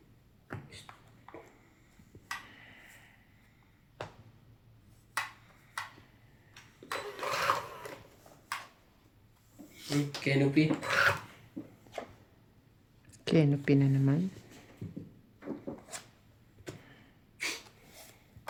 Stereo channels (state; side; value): identical; both; correlation 1.00